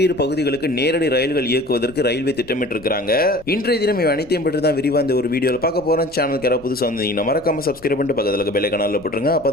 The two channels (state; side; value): noise; left; rumble, 24 dB below the sound